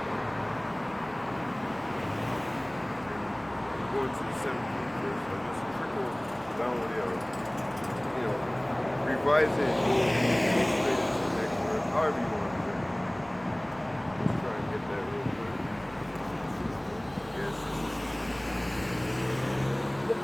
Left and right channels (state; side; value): noise; right; rumble, 25 dB below the sound